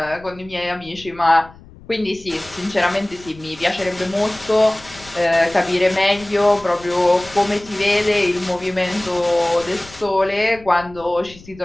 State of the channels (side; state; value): left; noise; rumble, 21 dB below the sound